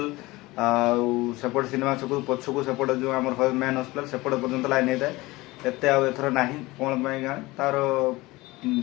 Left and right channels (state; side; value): quieter; right; 20.7 dB